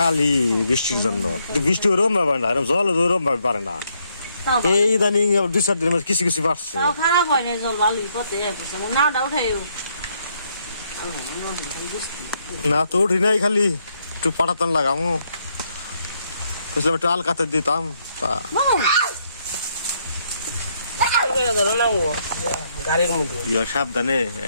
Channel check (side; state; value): both; inverted; correlation -0.74